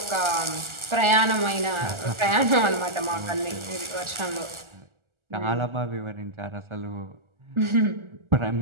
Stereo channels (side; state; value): left; late; 1.4 ms